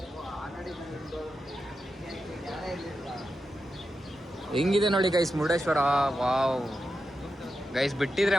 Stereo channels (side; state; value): both; normal; correlation 0.89